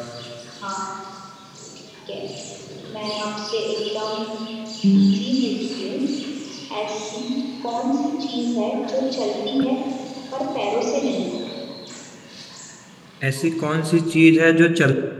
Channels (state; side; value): identical; both; correlation 1.00